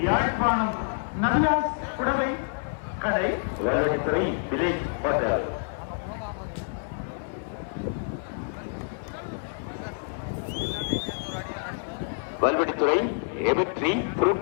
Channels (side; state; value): right; silent; 60 dB below the other